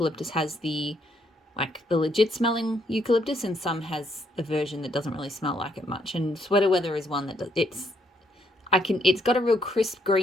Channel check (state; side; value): normal; both; correlation 0.72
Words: has the legit smelling eucalyptus, and some has a version that doesn't really smell like it much. And sweater weather is one that it's it's got a real crisp